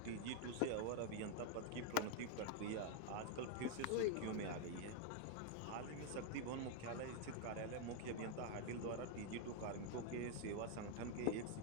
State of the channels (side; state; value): both; different; correlation 0.00